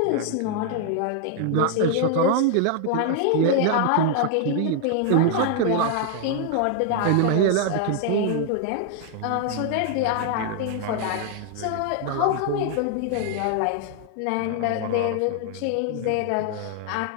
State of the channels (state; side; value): different; both; correlation 0.00